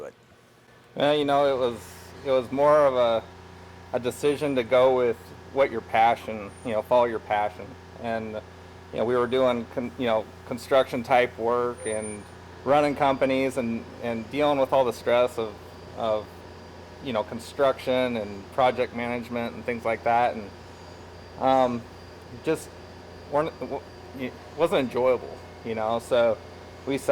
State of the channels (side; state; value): both; identical; correlation 1.00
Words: it? Well, it was more of a decision to go with what your passion, follow your passion. And, we were doing, construction type work and running companies and dealing with all the stress of construction and project management and things like that, and it wasn't enjoyable, so we